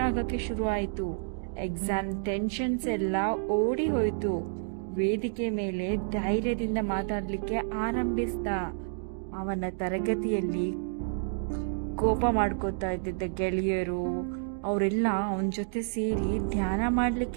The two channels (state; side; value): silent; left; digital silence